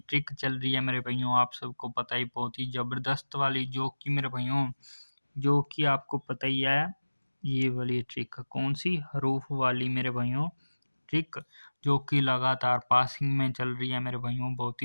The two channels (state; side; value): inverted; both; correlation -1.00